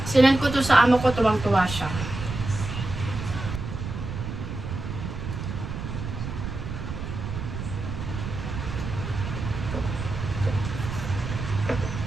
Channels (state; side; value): noise; right; rumble, 6 dB below the sound